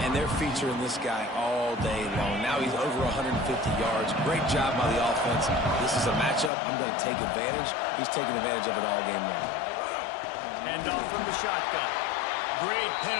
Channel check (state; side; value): drops out; right; at 6.5 s